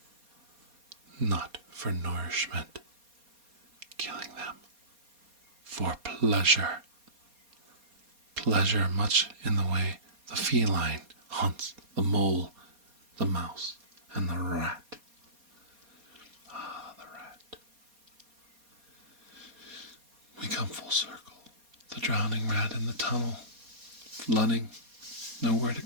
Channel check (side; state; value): left; late; 4.2 ms